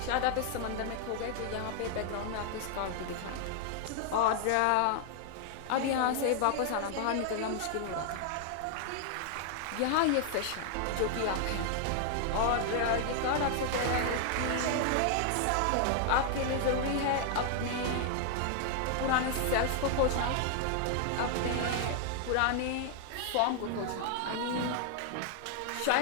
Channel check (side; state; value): both; different; correlation 0.00